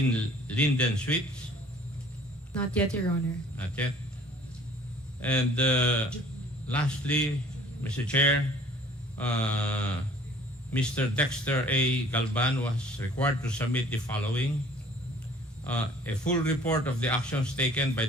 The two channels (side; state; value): both; normal; correlation 0.53